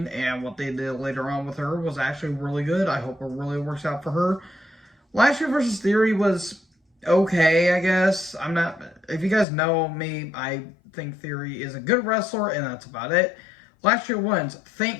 and what they did later on with her was actually really good. I hope it really works out for her. Lashley versus Theory was okay, I guess. If you guys know me, I think Theory is a good wrestler, and that's about it. Lashley wins.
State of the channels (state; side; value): drops out; right; at 9.5 s